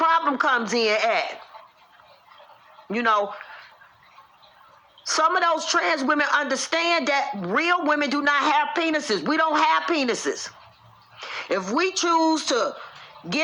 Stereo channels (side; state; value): both; identical; correlation 1.00